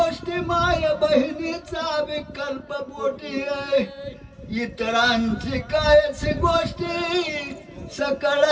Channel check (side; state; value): both; identical; correlation 1.00